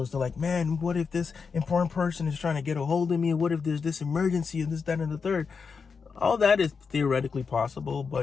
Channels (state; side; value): quieter; right; 5.4 dB